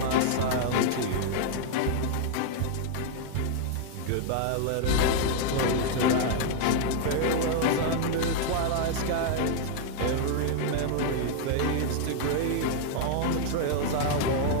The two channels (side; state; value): both; different; correlation 0.00